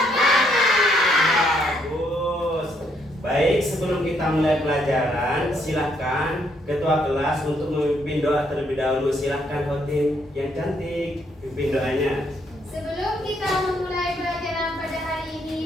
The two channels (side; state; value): both; normal; correlation 0.72